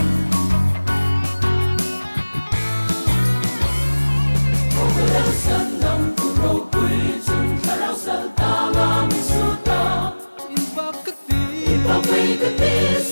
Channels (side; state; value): both; inverted; correlation -1.00